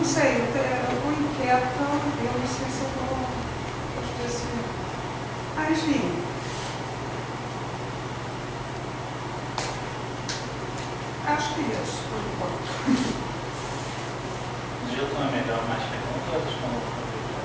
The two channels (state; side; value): identical; both; correlation 1.00